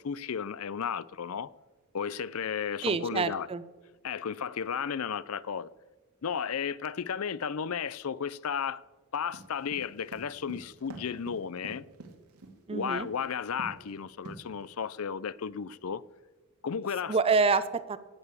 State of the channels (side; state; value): both; normal; correlation -0.05